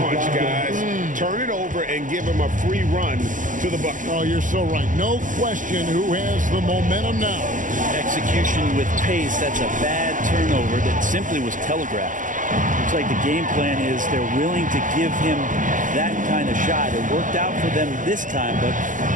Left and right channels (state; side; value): late; left; 0.38 ms